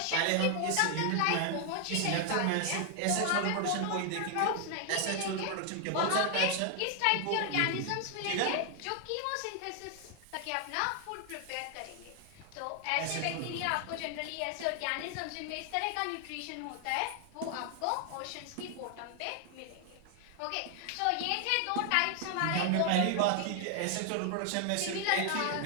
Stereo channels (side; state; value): both; different; correlation 0.00